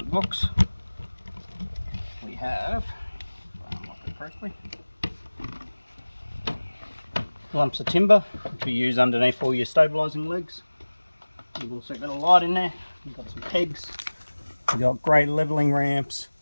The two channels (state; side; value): inverted; both; correlation -1.00